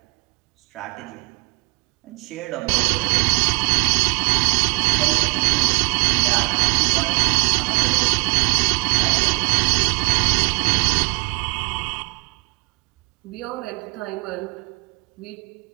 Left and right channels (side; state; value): left; quieter; 29.6 dB